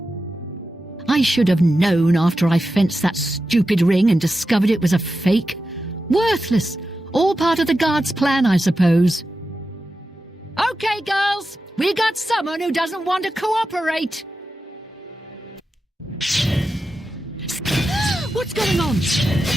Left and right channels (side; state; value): both; normal; correlation 0.91